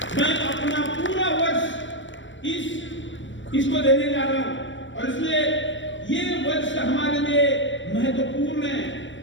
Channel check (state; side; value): late; right; 0.54 ms